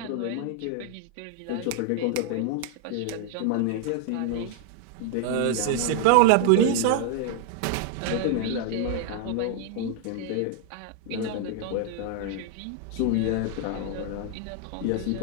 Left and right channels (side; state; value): both; different; correlation 0.00